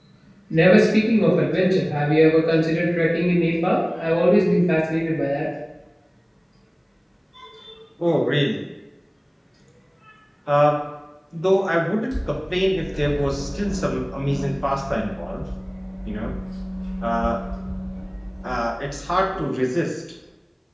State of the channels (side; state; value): both; identical; correlation 1.00